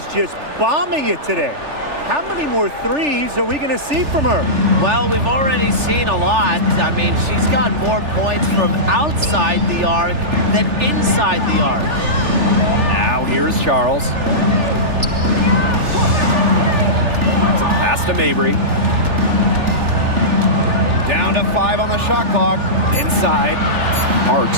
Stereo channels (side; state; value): left; late; 3.4 ms